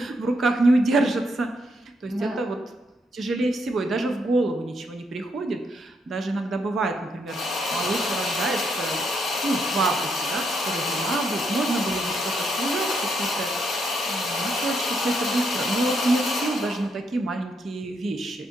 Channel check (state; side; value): normal; both; correlation 0.77